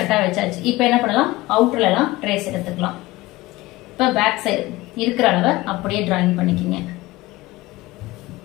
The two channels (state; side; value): quieter; right; 19.1 dB